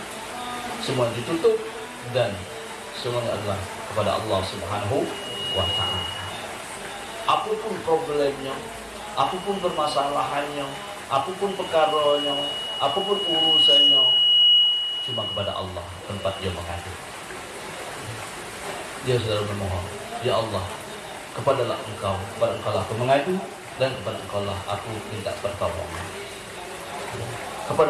Semua ditutup dan semuanya adalah kepada Allah Subhanahu wa ta'ala. Apapun problemnya, apapun permasalahannya, apapun perkaranya, apapun urusannya, cuma kepada Allah tempat dia mengadu. Dia selalu memohon, ya Allah, kepadalah Engkau, kepada Engkau lah aku mengadu, dan kepada Engkau lah aku minta pertolongan.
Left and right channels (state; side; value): identical; both; correlation 1.00